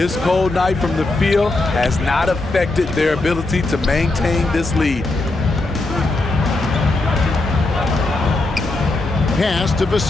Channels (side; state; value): right; quieter; 3.0 dB